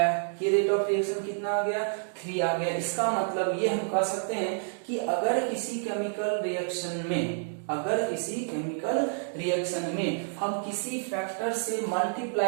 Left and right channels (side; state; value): left; silent; digital silence